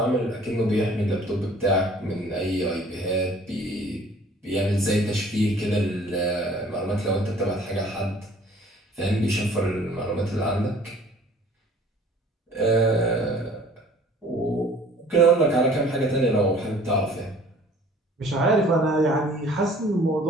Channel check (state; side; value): normal; both; correlation 0.52